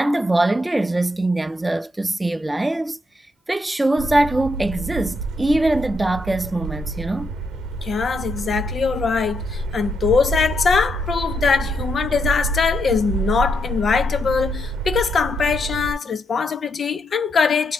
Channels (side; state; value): both; normal; correlation 0.79